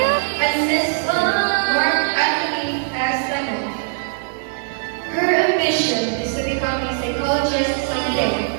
and Miss Mark Anthony S. Cano. Her ambition is to become a psychologist someday.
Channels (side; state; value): left; silent; digital silence